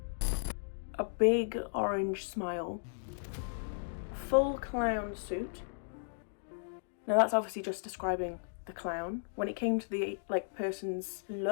a big orange smile, full clown suit. Now that's obviously just describing the clown. When it came to the person's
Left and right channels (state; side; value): silent; right; digital silence